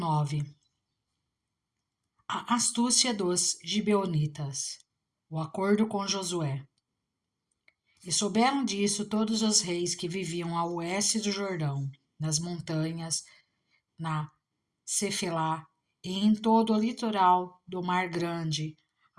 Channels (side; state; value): both; identical; correlation 1.00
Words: A astúcia dos gibeonitas. O acordo com Josué. E souberam disso todos os reis que viviam a oeste do Jordão, nas montanhas, na Cefelá e em todo o litoral do Mar Grande,